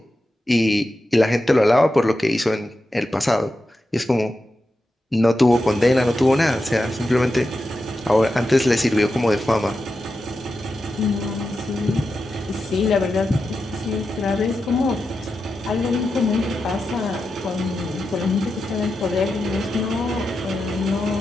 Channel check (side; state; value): both; normal; correlation 0.90